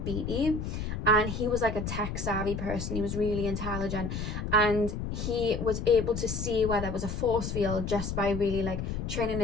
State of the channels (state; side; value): noise; left; rumble, 4 dB below the sound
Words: Beatty, and he was like a tech savvy person. He was really intelligent, and he was able to see where there was a force field just by really like training